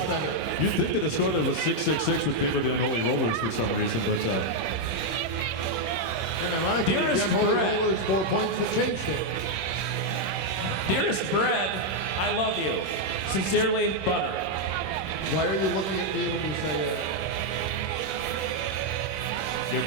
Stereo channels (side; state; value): right; late; 26 ms